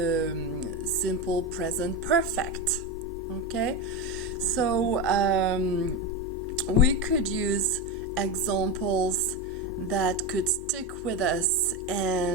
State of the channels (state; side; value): normal; both; correlation 0.16